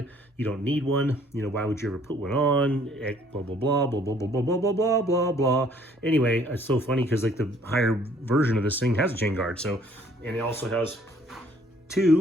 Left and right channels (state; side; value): normal; both; correlation 0.60